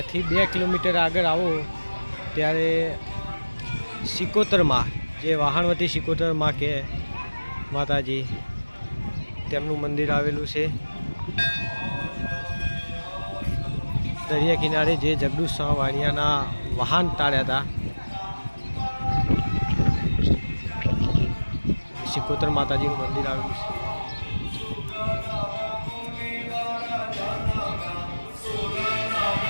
2 કિલોમીટર આગળ આવો ત્યારે શિકોતરમાં, જે વહાણવટી શિકોતરમાં કે માતાજી, તેમનું મંદિર આવેલું છે. દરિયા કિનારે જે જગદુશ વાણિયાના વાહન તાળ્યા હતા, શિકોતર માતાજીનું મંદિર આવેલું છે.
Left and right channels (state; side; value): inverted; both; correlation -1.00